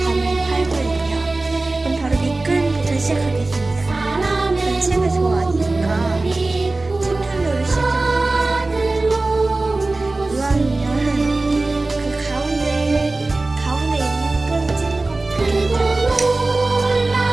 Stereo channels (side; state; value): left; quieter; 3.1 dB